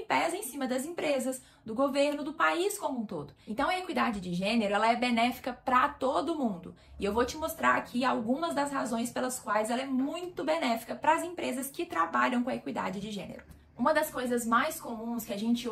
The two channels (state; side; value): identical; both; correlation 1.00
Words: pesam em cima das empresas, do governo, do país como um todo. Então a equidade de gênero, ela é benéfica para todo mundo. E eu vou te mostrar aqui algumas das razões pelas quais ela é muito benéfica para as empresas que trabalham com a equidade de gênero. Uma das coisas mais comuns que a gente